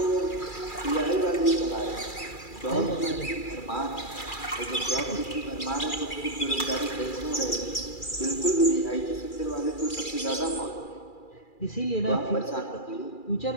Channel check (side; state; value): right; late; 2.4 ms